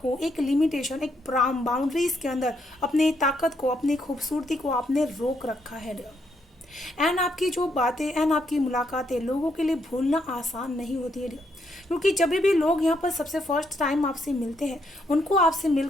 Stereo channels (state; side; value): normal; both; correlation 0.75